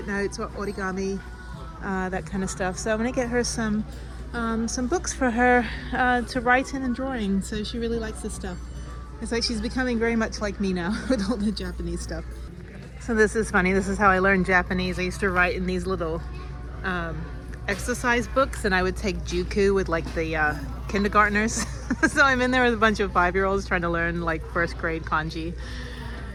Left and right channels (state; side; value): identical; both; correlation 1.00